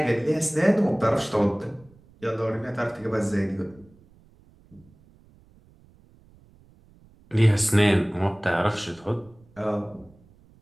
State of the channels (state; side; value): noise; right; rumble, 28 dB below the sound